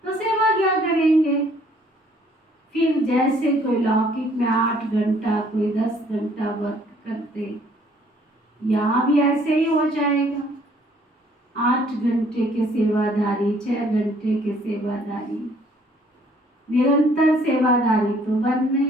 तो सेवा क्या करेंगे? फिर जैसे कोई लौकिक में 8 घंटा, कोई 10 घंटा वर्क करते, यहाँ भी ऐसे ही हो जाएगा। 8 घंटे के सेवादारी, 6 घंटे के सेवादारी, निरंतर सेवादारी तो बन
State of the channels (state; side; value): normal; both; correlation 0.61